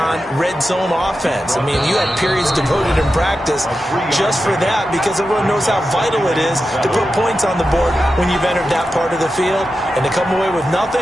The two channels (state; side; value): normal; both; correlation 0.91